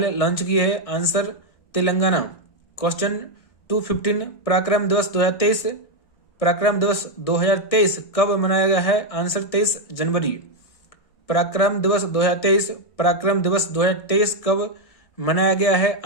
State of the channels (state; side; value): late; right; 1.6 ms